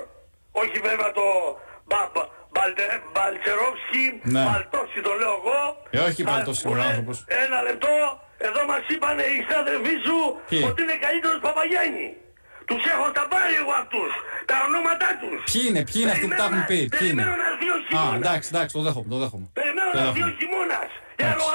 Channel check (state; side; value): inverted; both; correlation -1.00